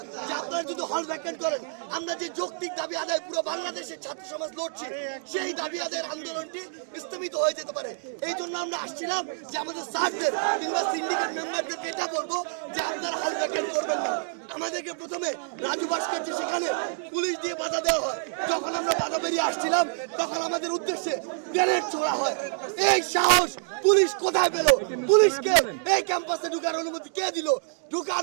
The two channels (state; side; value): silent; left; digital silence